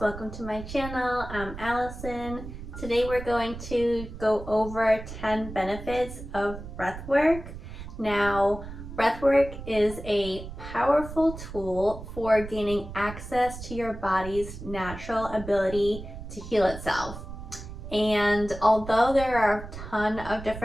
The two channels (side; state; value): right; noise; rumble, 11 dB below the sound